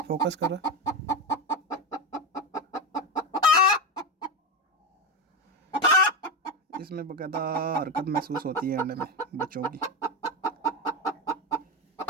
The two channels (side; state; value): both; normal; correlation 0.15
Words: फोकस करो। इसमें बाकायदा हरकत महसूस होती है अंडे में बच्चों की।